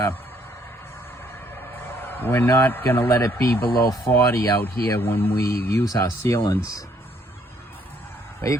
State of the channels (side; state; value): both; normal; correlation 0.67